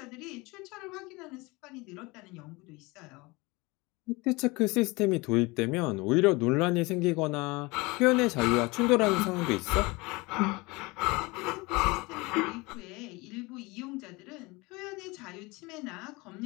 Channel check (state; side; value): quieter; right; 24.3 dB